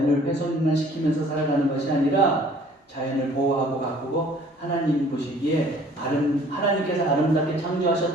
훼손만 시키면서 살아가는 것이 아니라 자연을 보호하고 가꾸고 하나님 보시기에 하나님께서 아름답게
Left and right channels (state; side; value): normal; both; correlation 0.54